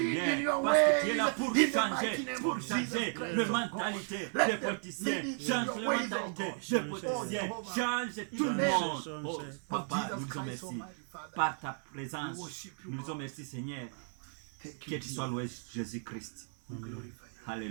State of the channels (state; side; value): silent; left; 55 dB below the other